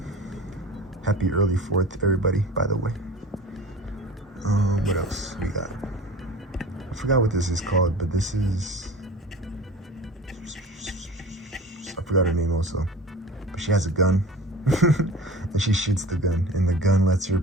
Happy early 4th, everybody, by the way. What else we got? I forgot what this is called, but this is... I forgot her name also. But she has a gun, and she shoots the gun, and the gun lets her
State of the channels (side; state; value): both; normal; correlation 0.39